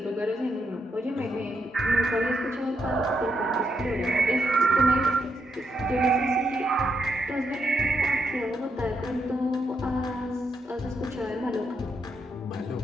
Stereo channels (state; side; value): normal; both; correlation 0.80